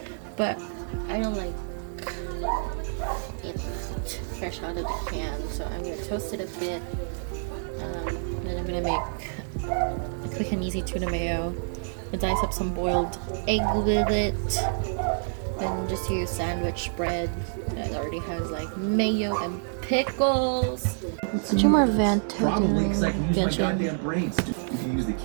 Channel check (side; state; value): left; silent; 60 dB below the other